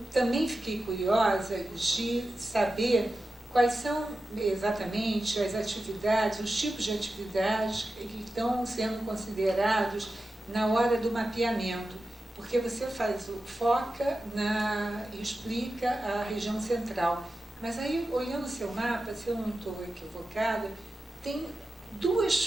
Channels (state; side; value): normal; both; correlation 0.92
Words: também fiquei curiosa de saber quais são exatamente as atividades, os tipos de atividades que estão sendo considerados na hora do mapeamento, porque você foca e explica a região central, mas aí, olhando o seu mapa, se eu não estou equivocada, tem duas